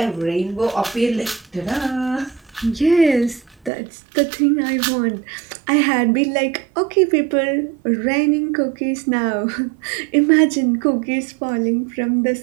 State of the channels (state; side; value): drops out; left; at 3.7 s